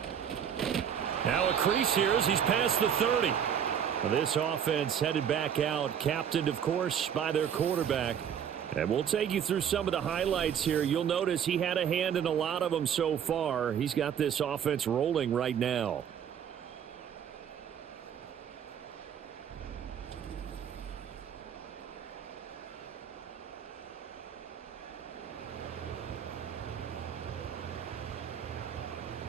Now a crease here as he's past the 30. Well, this offense headed back out, captained, of course, by their quarterback. And we'll take you through some of the highlights here. You'll notice he had a hand in a lot of them so far. He's got this offense rolling right now.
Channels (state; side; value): quieter; left; 8.5 dB